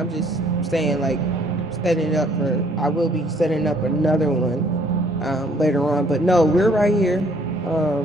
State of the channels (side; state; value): both; normal; correlation 0.62